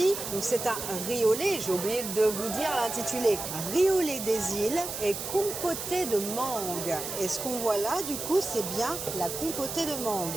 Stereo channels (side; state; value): right; noise; hiss, 6 dB below the sound